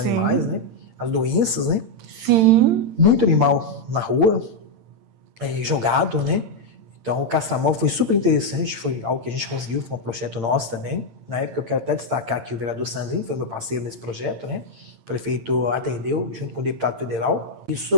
né? As doenças, né? Sim. Muito animal na rua, jogado, né? Então, o castramóvel foi super interessante, foi algo que a gente conseguiu, foi um projeto nosso também. Na época, eu quero até destacar que o vereador Sandrinho foi meu parceiro nesse projeto, né? O prefeito atendeu, junto com o deputado federal.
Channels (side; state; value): left; late; 8.8 ms